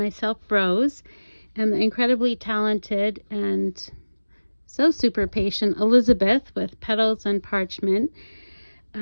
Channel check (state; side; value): inverted; both; correlation -1.00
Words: Rose, and the incredibly talented and so super patient Elizabeth with Petals and Parchment,